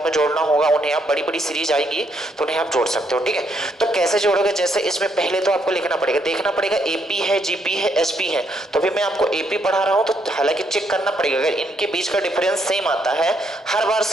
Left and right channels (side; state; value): both; normal; correlation 0.74